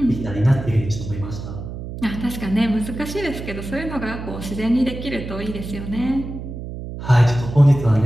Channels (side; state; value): right; noise; hum, 9 dB below the sound